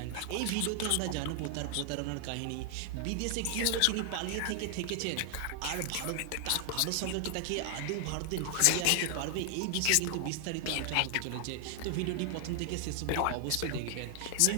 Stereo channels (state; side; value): different; both; correlation 0.00